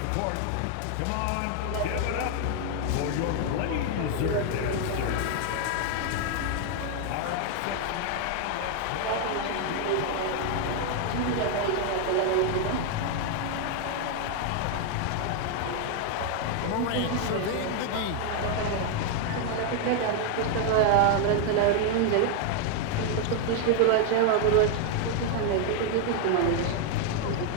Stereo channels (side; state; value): both; different; correlation 0.00